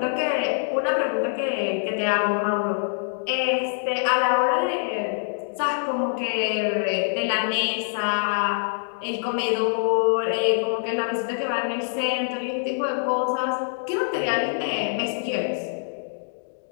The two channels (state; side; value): silent; right; digital silence